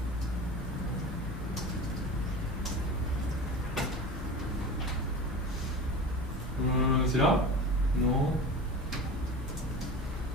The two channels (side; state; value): both; normal; correlation 0.32